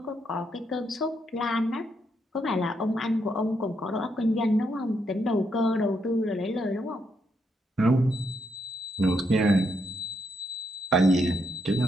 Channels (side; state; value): both; normal; correlation 0.78